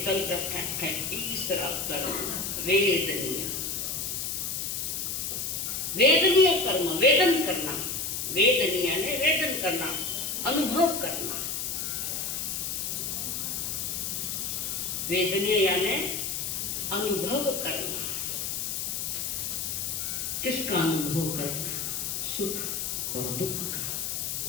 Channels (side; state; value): left; noise; hiss, 2 dB below the sound